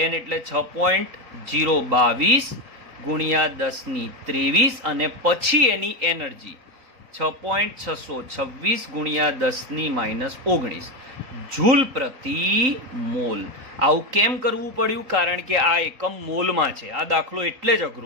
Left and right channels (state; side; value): late; left; 3.9 ms